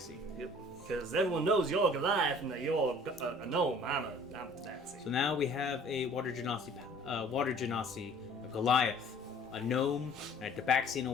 Yep. Because everyone knows you're Goliath and that you're a gnome. I'm a Tabaxi. So now we have a water genasi, a Goliath, a gnome, and a Tabaxi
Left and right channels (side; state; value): both; normal; correlation 0.51